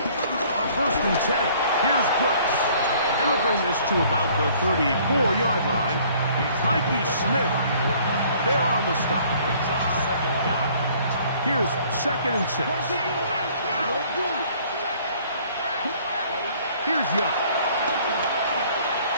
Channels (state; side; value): inverted; both; correlation -0.57